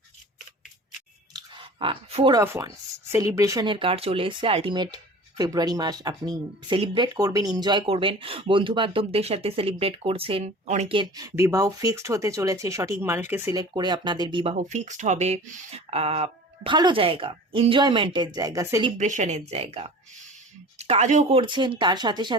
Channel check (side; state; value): both; normal; correlation 0.40